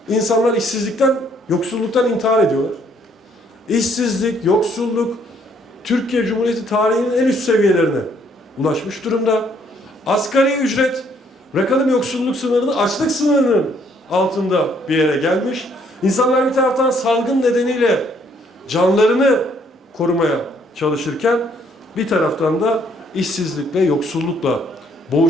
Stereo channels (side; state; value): both; normal; correlation 0.66